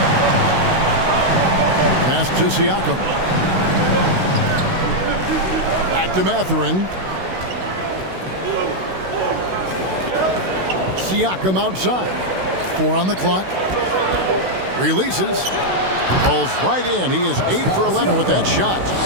Pass to Siakam. Back to Mathurin. Siakam outside. 4 on the clock. Releases. Falls right in. He is 8 for 11 with that shot.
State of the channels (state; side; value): late; left; 16 ms